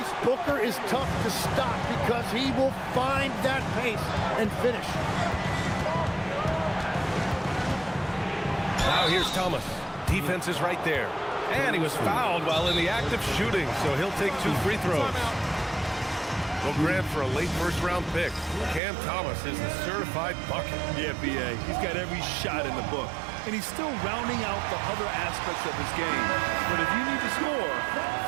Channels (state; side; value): drops out; left; at 18.8 s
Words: Booker is tough to stop because he will find that pace and finish. Now here's Thomas. Defense is right there. And he was fouled while in the act of shooting, so he'll take 2 free throws. Well, Grant, for a late first-round pick, Cam Thomas is the certified bucket. Yeah, B.A. He's got every shot in the book. And he's still rounding out the other aspects of his game. But if you need to score,